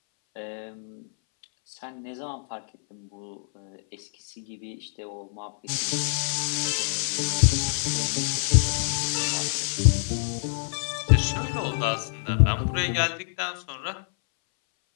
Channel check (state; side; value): silent; right; 61 dB below the other